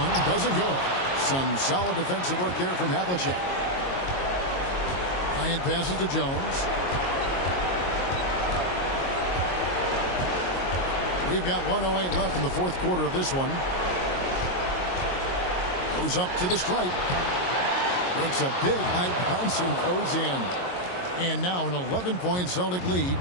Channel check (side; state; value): right; late; 22 ms